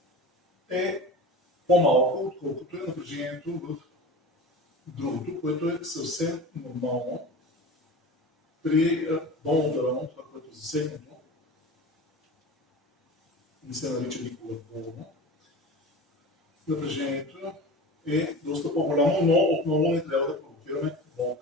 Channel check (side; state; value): both; normal; correlation 0.33